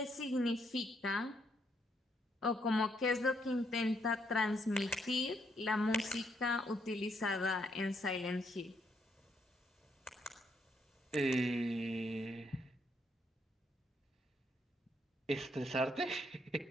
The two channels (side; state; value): both; normal; correlation 0.74